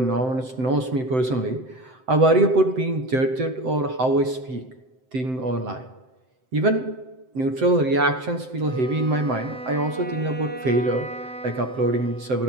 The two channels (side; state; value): left; late; 7.8 ms